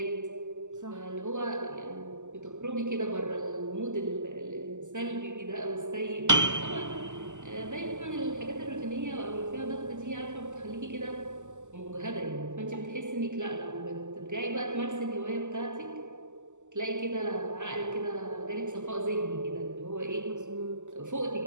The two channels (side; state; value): left; late; 0.84 ms